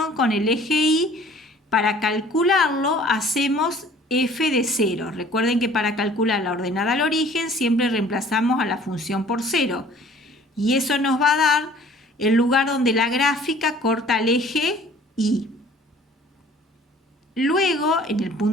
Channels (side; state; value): both; normal; correlation 0.52